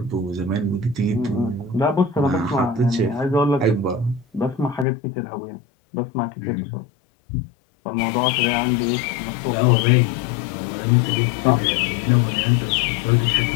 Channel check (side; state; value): right; drops out; at 4.9 s